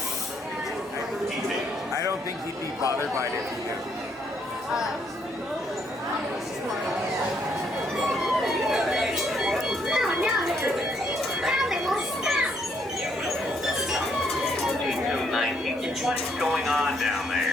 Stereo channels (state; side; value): normal; both; correlation 0.71